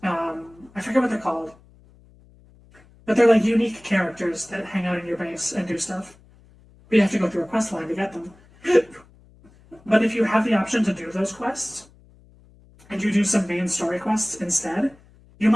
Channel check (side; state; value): left; noise; hum, 27 dB below the sound